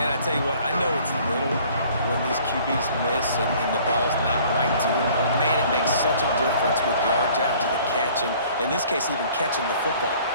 I tell you what, I know it's little when these QBs miss and the ball's not right to them, but man, it makes such a difference with yards after the catch, and in this case, even catching the football.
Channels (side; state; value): both; inverted; correlation -0.54